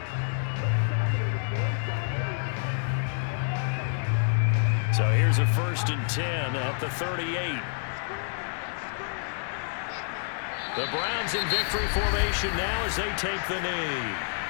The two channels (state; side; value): silent; right; 59 dB below the other